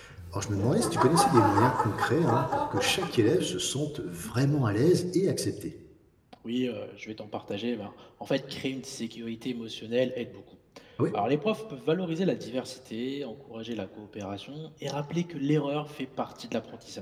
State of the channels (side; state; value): both; identical; correlation 1.00